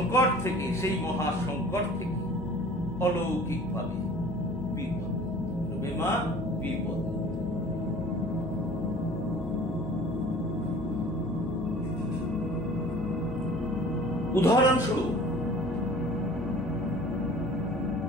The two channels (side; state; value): both; normal; correlation 0.46